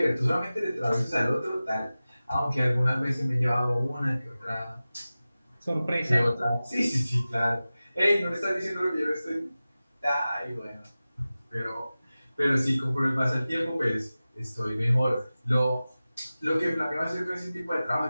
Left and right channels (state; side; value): inverted; both; correlation -0.96